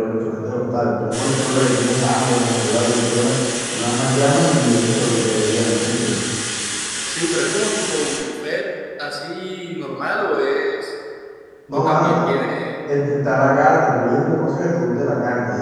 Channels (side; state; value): both; identical; correlation 1.00